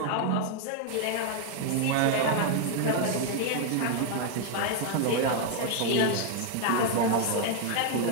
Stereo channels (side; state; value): both; different; correlation 0.00